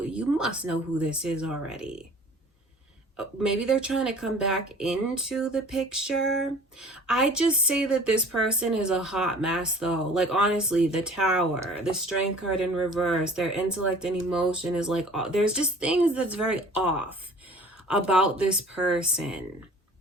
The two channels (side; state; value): both; normal; correlation 0.47